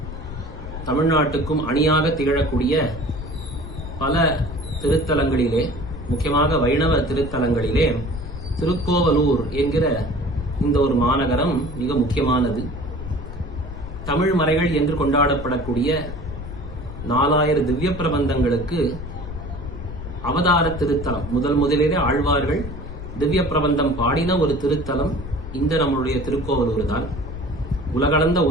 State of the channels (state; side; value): noise; left; rumble, 10 dB below the sound